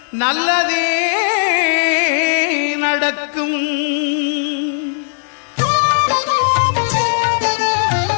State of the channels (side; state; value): right; silent; digital silence